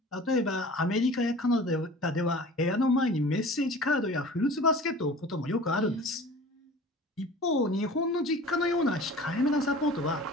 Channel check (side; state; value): both; normal; correlation 0.42